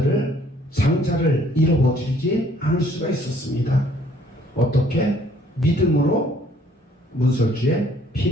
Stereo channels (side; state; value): both; normal; correlation 0.61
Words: 장자를 잃어버리지 않을 수가 있었습니다. 어떻게? 믿음으로 문설주에